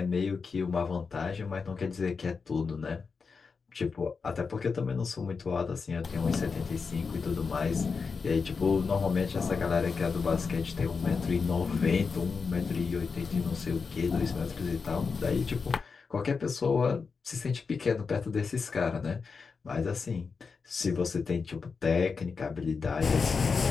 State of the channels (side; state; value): right; quieter; 5.1 dB